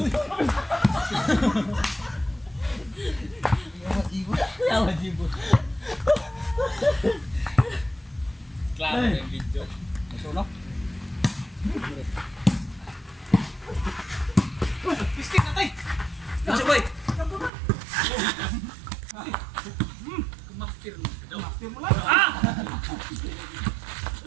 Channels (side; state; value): left; drops out; at 17.5 s